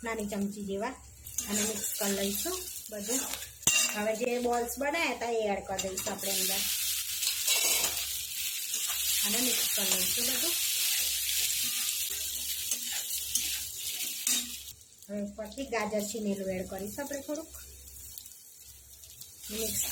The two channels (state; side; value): identical; both; correlation 1.00